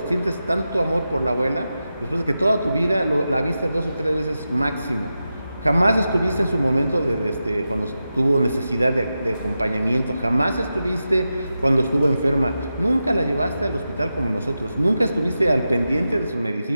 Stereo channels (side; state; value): both; inverted; correlation -0.91